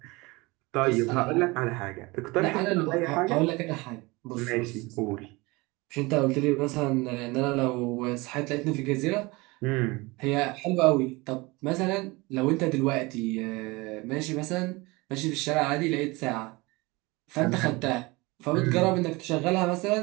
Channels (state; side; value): quieter; left; 23.9 dB